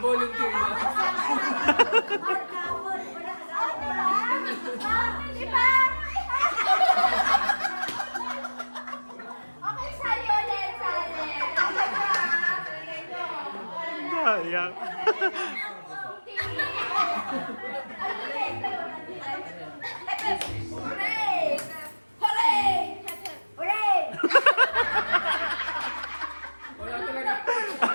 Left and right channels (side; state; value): both; inverted; correlation -1.00